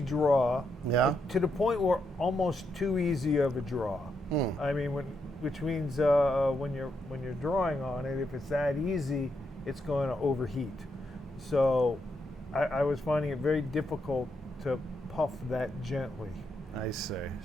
draw. Yeah. To the point where almost too easy of a draw. I mean, which means when you're drawing on it, if it's that easy, it's going to overheat. So I was finding it very difficult to puff that gently. I see.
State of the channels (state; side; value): normal; both; correlation 0.80